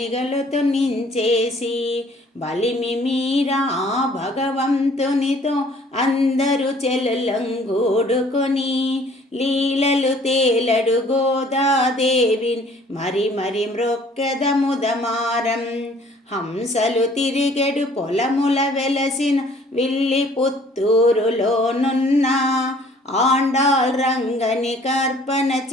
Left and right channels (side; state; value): both; normal; correlation 0.56